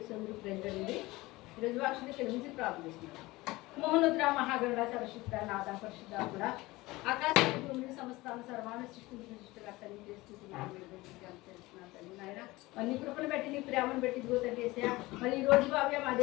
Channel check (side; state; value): right; quieter; 20.4 dB